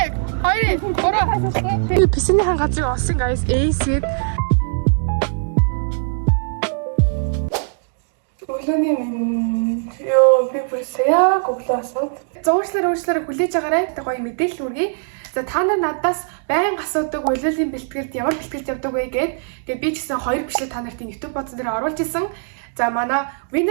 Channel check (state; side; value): silent; left; 61 dB below the other